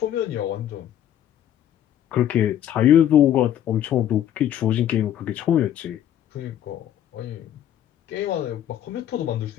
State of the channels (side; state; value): right; quieter; 10.9 dB